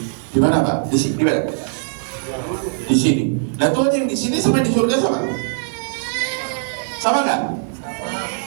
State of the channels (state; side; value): silent; left; digital silence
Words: Di mana Pak? Di sini. Di mana? Di sini. Nah Tuhan yang di sini sama di surga sama? Sama nggak?